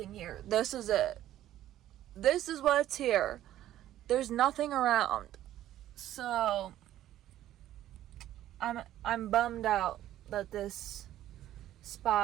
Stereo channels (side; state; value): left; quieter; 12.9 dB